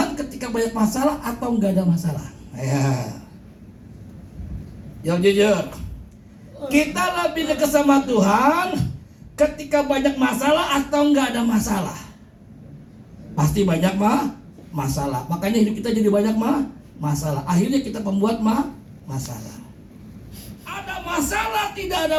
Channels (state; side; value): identical; both; correlation 1.00